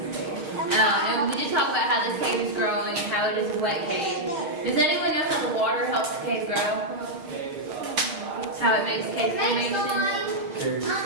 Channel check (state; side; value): late; left; 6.5 ms